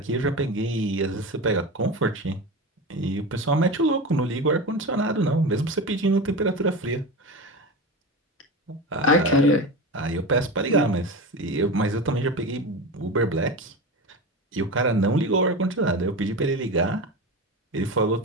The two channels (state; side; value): normal; both; correlation 0.25